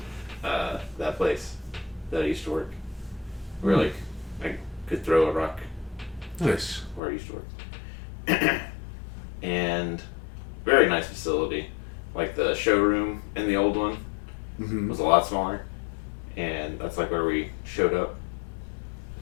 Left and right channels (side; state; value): right; drops out; at 7.0 s